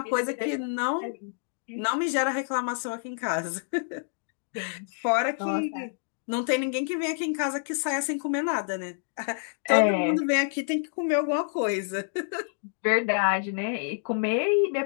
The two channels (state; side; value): silent; right; digital silence